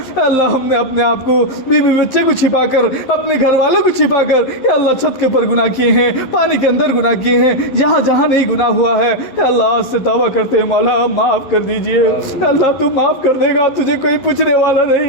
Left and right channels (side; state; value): right; late; 11 ms